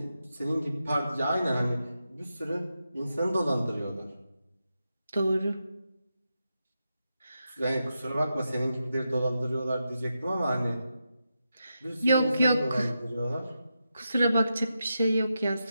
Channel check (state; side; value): inverted; both; correlation -0.88